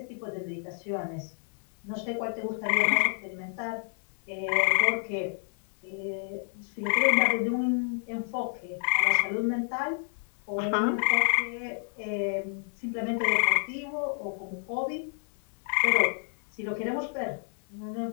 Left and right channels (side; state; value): right; silent; 58 dB below the other